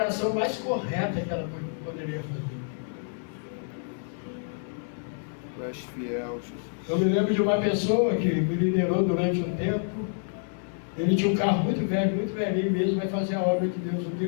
mais correta que ela poderia fazer. Tu és fiel, Jesus. Eu me lembro de uma pessoa que me liderou durante um tempo. Ele tinha um carro muito velho, muito velhinho mesmo, vai fazer a obra de Deus. Um dia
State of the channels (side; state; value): right; silent; digital silence